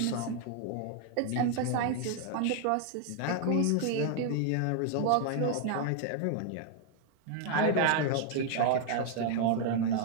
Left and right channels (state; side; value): different; both; correlation 0.00